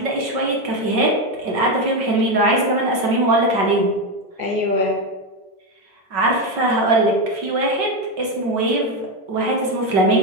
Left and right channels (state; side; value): late; left; 5.3 ms